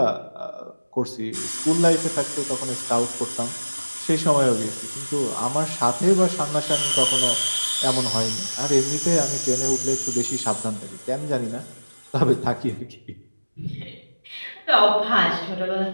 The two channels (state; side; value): inverted; both; correlation -1.00